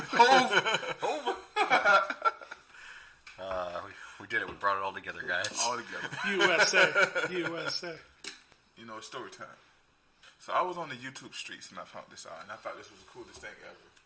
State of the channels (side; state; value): both; identical; correlation 1.00